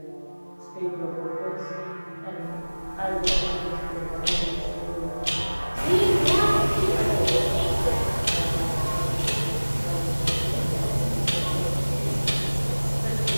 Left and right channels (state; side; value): inverted; both; correlation -1.00